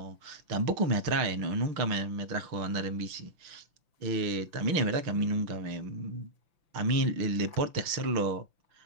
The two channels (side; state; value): left; late; 6.0 ms